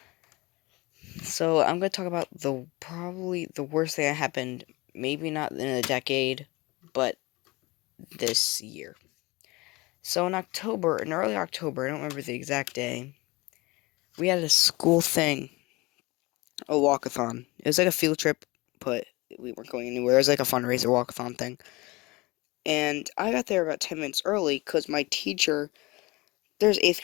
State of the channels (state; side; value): quieter; right; 23.1 dB